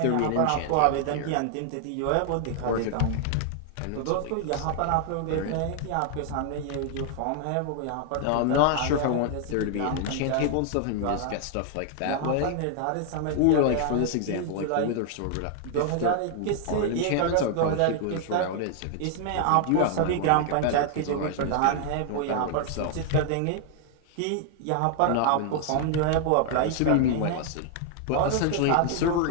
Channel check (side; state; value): both; different; correlation 0.00